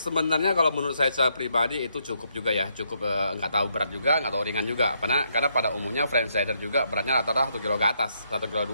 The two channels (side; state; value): both; inverted; correlation -0.75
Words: kalau menurut saya secara pribadi itu cukup juga ya, cukup nggak tahu berat juga, nggak tahu ringan juga. Karena pada umumnya franchiser juga beratnya rata-rata 1 kg ke atas, 1 kg